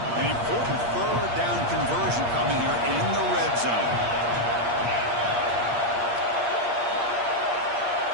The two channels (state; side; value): late; left; 8.5 ms